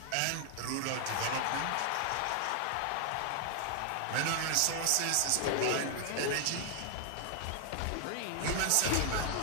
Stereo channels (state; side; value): different; both; correlation 0.00